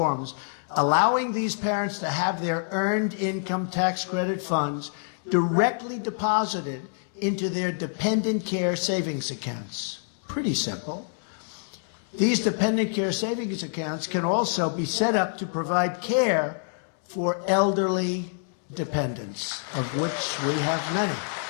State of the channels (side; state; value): right; silent; 60 dB below the other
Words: allowing these parents to have their earned income tax credit funds directly deposited into their dependent care savings accounts. Pretty simple. These dependent care savings accounts can also be set up to provide care for elderly dependents, of which we have many.